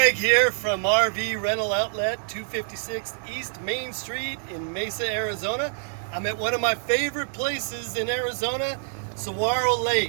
here from RV Rental Outlet 256 East Main Street in Mesa, Arizona. I'm at one of my favorite places in Arizona, Saguaro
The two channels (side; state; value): left; silent; digital silence